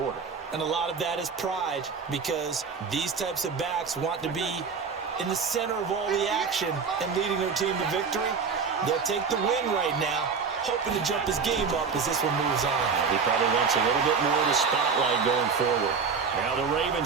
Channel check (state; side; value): quieter; left; 5.5 dB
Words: And a lot of that is pride, because these types of backs want to be in the center of all the action and leading their team to victory. They'll take the win right now, hoping to jump his game up as this one moves on. He probably wants a little bit more of the spotlight going forward. Now the